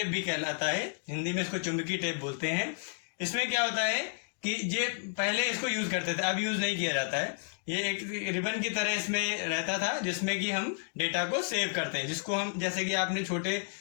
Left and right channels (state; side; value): silent; right; digital silence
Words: भी कहलाता है, हिंदी में इसको चुंबकीय टेप बोलते हैं। इसमें क्या होता है कि ये पहले इसको यूज करते थे, अब यूज नहीं किया जाता है। ये एक रिबन की तरह इसमें रहता था जिसमें कि हम डेटा को सेव करते हैं, जिसको हम जैसे कि आपने छोटे